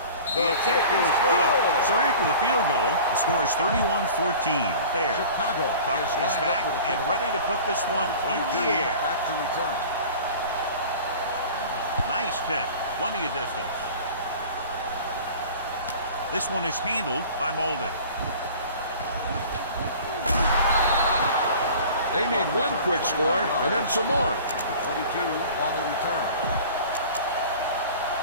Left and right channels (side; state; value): both; inverted; correlation -0.42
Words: The attack is good. So after the field goal, the score is 31-14. There. Chicago is back and ready to put this one in the air. Back to return. Nice kick. Plenty of distance. This one is handled by Molden. They need one quick score and then some more. 22 on the return.